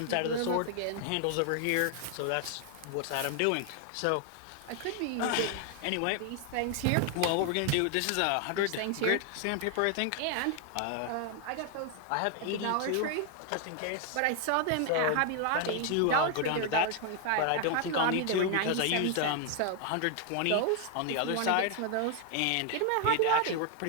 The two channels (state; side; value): different; both; correlation 0.00